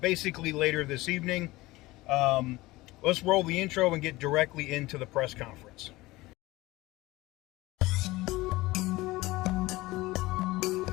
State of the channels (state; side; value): quieter; right; 19.7 dB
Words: later this evening. Let's roll the intro and get directly into the press conference.